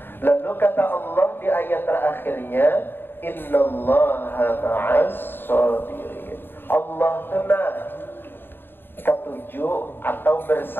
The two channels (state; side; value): late; right; 0.10 ms